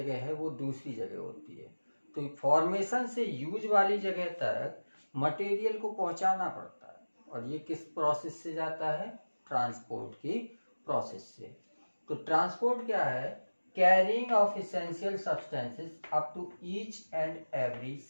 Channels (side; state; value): both; inverted; correlation -1.00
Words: है वो दूसरी जगह होती है। तो फॉर्मेशन से यूज वाली जगह तक मटेरियल को पहुंचाना पड़ता है और ये किस प्रोसेस से जाता है? ट्रांसपोर्ट की प्रोसेस से। तो ट्रांसपोर्ट क्या है? Carrying of essential substances up to each and every